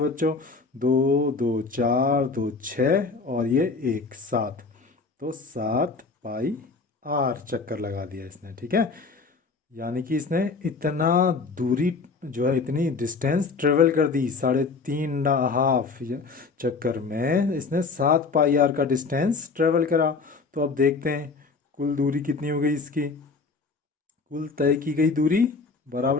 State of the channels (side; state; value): right; quieter; 4.4 dB